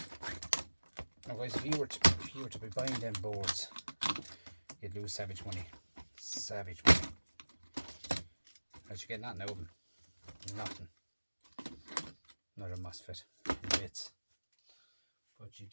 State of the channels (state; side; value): inverted; both; correlation -1.00